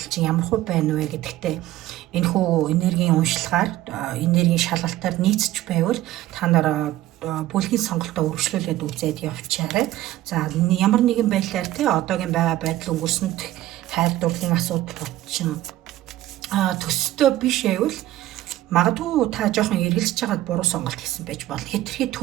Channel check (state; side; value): quieter; left; 15.0 dB